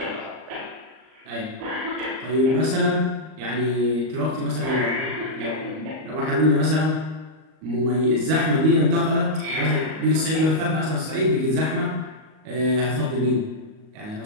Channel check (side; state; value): left; late; 38 ms